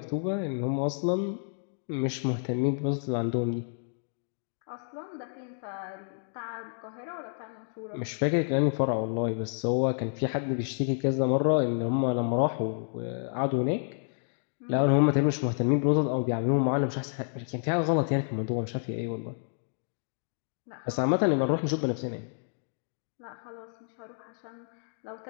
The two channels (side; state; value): right; silent; digital silence